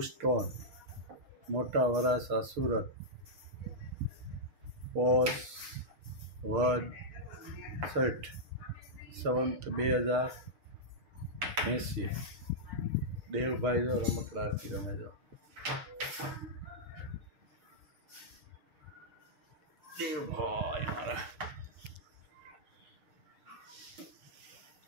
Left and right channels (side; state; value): left; late; 6.6 ms